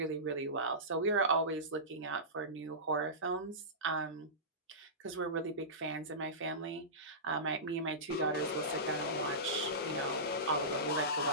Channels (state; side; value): normal; both; correlation -0.20